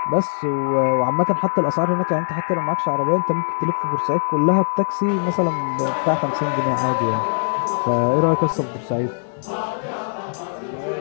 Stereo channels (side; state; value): right; silent; digital silence